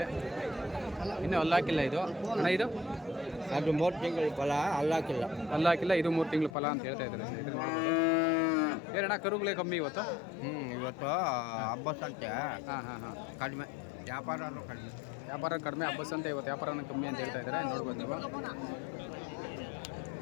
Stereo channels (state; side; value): drops out; right; at 6.5 s